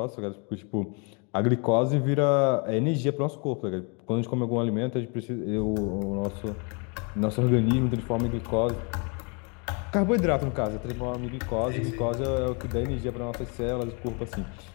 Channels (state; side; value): quieter; right; 34.9 dB